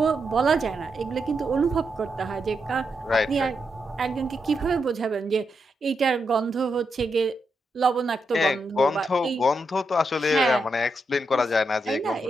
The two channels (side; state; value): both; normal; correlation 0.83